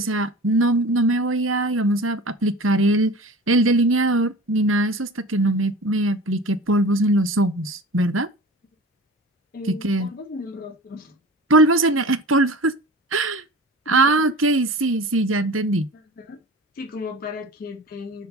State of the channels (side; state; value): both; normal; correlation 0.37